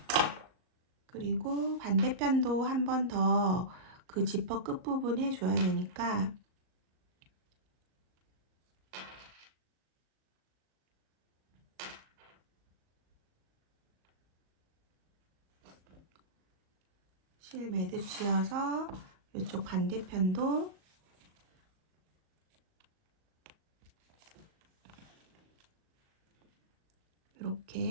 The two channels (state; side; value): late; left; 38 ms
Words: 그리고 반대편도 한 번 더 그 지퍼 끝부분 해줘야 되니까 실 매듭 지어서 이쪽 반대편도